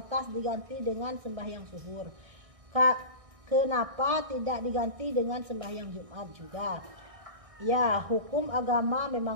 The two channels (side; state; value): left; late; 1.6 ms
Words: diganti dengan sembahyang zuhur? Kenapa tidak diganti dengan sembahyang Jumat juga? Ya, hukum agama